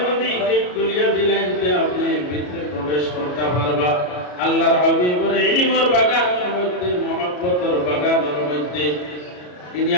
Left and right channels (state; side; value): late; right; 33 ms